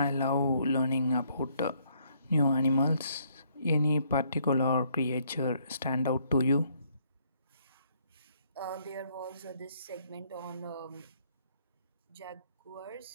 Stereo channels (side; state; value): both; inverted; correlation -0.69